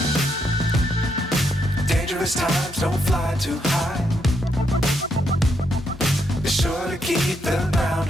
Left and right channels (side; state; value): both; normal; correlation 0.78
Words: Dangerous times, don't fly too high. Be sure to keep the ground